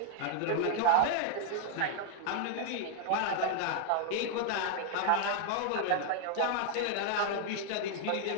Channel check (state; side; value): different; both; correlation 0.00